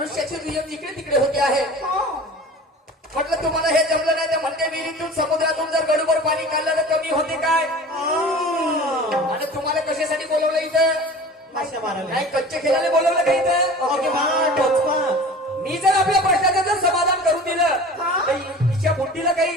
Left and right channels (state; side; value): normal; both; correlation 0.39